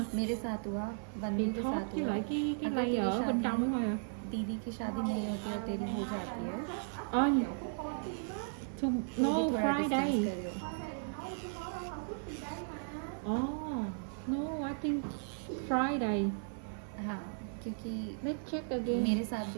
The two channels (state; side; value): silent; left; 54 dB below the other